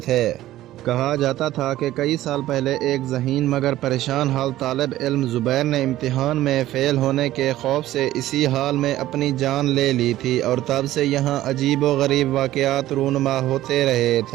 थे। कहा जाता था कि कई साल पहले एक ज़हीन मगर परेशान हाल तालिब इल्म ज़ुबैर ने इम्तिहान में फ़ेल होने के खौफ से इसी हाल में अपनी जान ले ली थी, और तब से यहाँ अजीब व गरीब वाक़यात रूनुमा होते रहे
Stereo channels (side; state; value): left; quieter; 14.7 dB